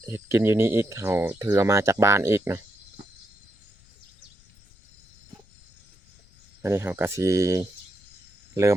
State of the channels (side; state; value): left; noise; rumble, 27 dB below the sound